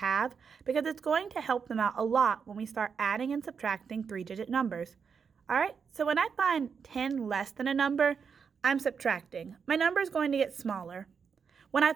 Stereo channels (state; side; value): quieter; left; 6.3 dB